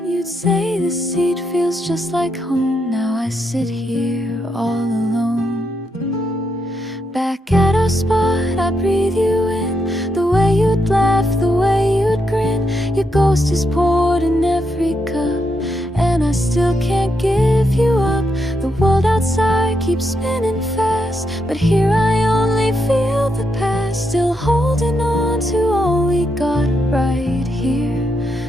You'd say this seat feels just like home. Now I sit here all alone. Back at our spot, I breathe you in, the way you'd laugh, the way you'd grin. Your ghost is poured in every cup, and I still can't give you up. The world outside keeps spinning fast, but here I only feel the past. Still holding on to all we got right here,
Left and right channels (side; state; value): both; normal; correlation 0.81